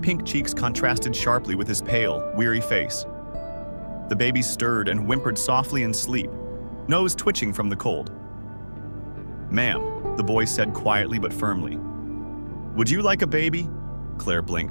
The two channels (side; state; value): both; inverted; correlation -1.00